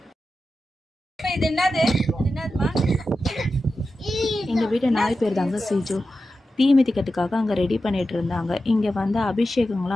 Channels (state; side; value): normal; both; correlation 0.92